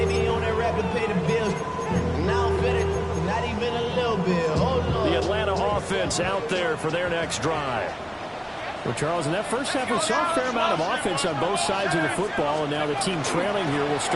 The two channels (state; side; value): identical; both; correlation 1.00